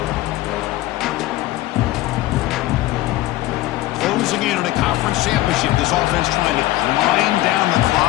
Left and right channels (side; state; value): right; quieter; 16.6 dB